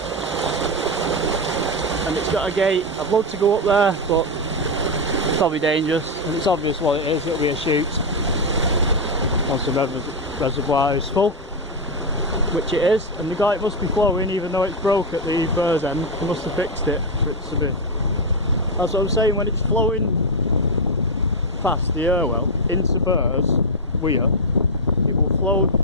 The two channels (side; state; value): both; normal; correlation 0.05